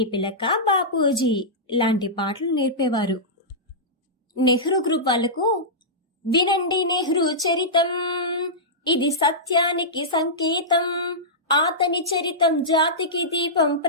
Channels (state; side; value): normal; both; correlation -0.14